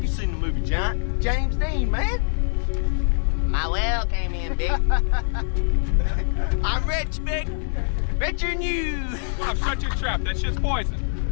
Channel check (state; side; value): silent; right; digital silence